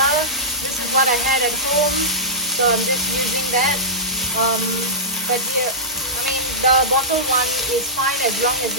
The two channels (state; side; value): normal; both; correlation -0.15